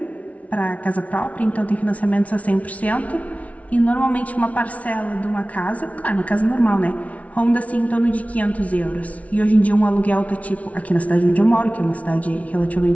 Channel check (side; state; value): right; late; 0.067 ms